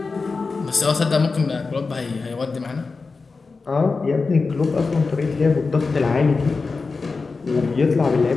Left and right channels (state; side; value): quieter; right; 4.2 dB